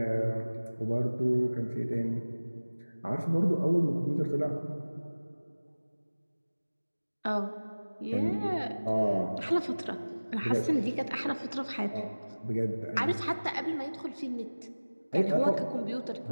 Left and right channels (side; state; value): both; inverted; correlation -1.00